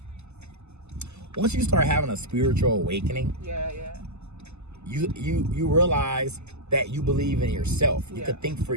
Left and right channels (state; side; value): late; left; 0.81 ms